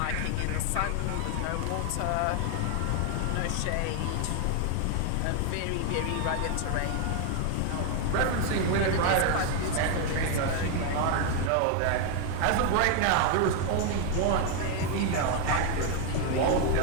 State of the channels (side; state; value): both; different; correlation 0.01